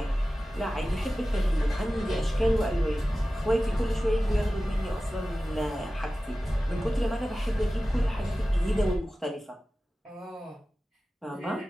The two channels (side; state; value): both; normal; correlation 0.96